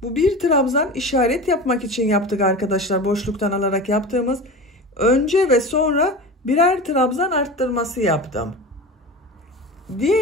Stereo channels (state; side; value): normal; both; correlation 0.31